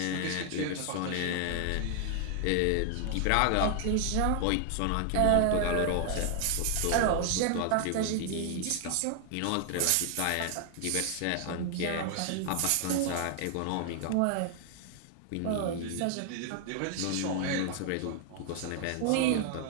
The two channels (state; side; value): different; both; correlation 0.00